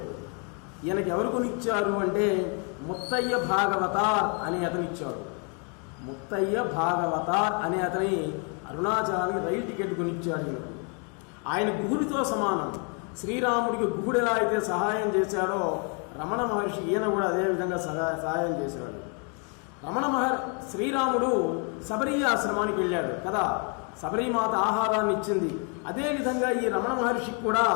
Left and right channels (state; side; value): quieter; right; 37.6 dB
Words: ఈయనకి ఎవరు కొనిచ్చారు అంటే ముత్తయ్య భాగవతార్ అని అతనిచ్చాడు. ముత్తయ్య భాగవతార్ అనే అతని అరుణాచలానికి రైలు టికెట్ కొనిచ్చాడు ఈయనకు. ఆయన గుహుడితో సమానం. శ్రీరాముడికి గుహుడు ఎలా అయితే సహాయం చేశాడో రమణ మహర్షి ఈయన కూడా అదేవిధంగా సహాయం చేశాడు. శ్రీరాముడు శబరి ఆశ్రమానికి వెళ్ళాడు కదా, శబరిమాత ఆహారాన్ని ఇచ్చింది. అదేవిధంగా ఈ రమణ మహర్షికి కూడా